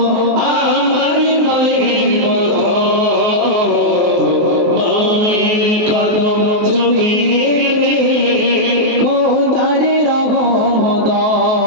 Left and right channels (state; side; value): late; left; 23 ms